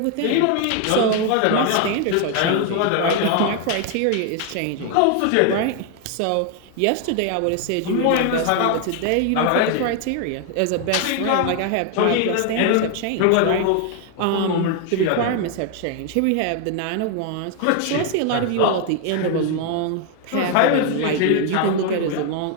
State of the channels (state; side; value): different; both; correlation 0.01